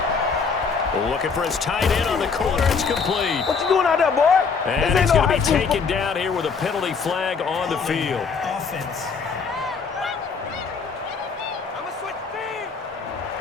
Looking for his tight end on the corner. It's complete. What you doing out there, boy? And he's going to be taken down here with a penalty flag on the field. Offense.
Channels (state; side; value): quieter; right; 5.3 dB